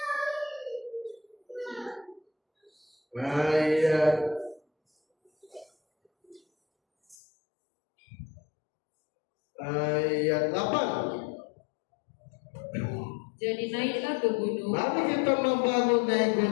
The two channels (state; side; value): drops out; right; at 7.2 s